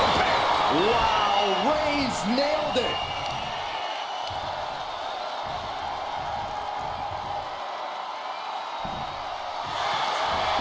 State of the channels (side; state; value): both; identical; correlation 1.00